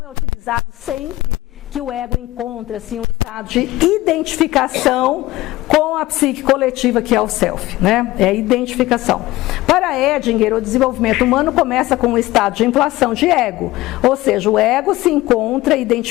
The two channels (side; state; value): right; quieter; 17.7 dB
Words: é utilizado sempre que o ego encontra-se em um estado de identificação com a psique coletiva, que é o self, né? É a identificação. Para Edinger, o desenvolvimento humano começa com um estado de inflação de ego, ou seja, o ego se encontra